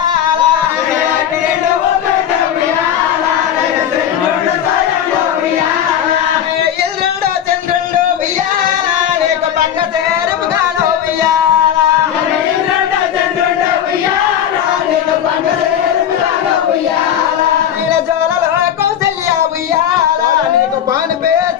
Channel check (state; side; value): quieter; right; 9.8 dB